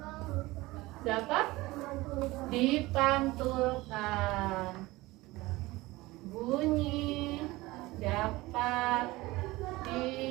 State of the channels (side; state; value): left; quieter; 20.1 dB